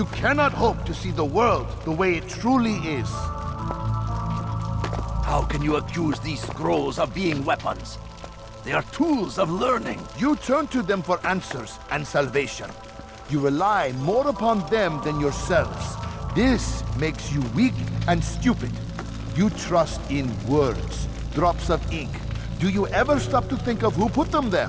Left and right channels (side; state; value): both; identical; correlation 1.00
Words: cannot hope to see the world the way it truly is. How can you accuse these scrolls of being weapons? They are tools of learning. You turn to them for answers and salvation. You rely more upon them than yourselves. This makes you weak and stupid. You trust in words, drops of ink. Do you ever stop to think of who put them there?